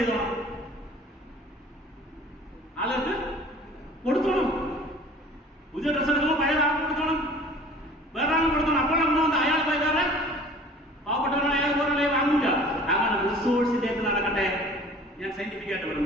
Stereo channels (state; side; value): normal; both; correlation 0.47